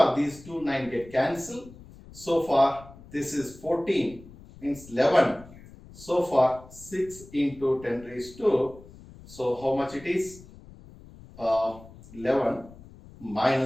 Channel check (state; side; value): noise; left; rumble, 20 dB below the sound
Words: these two 9 get cancelled. So far this is 14, means 11. So far 6 into 10 raised to, so how much it is? 11